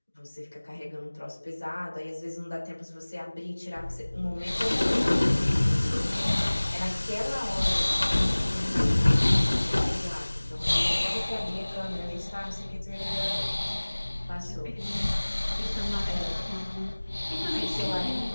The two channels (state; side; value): inverted; both; correlation -1.00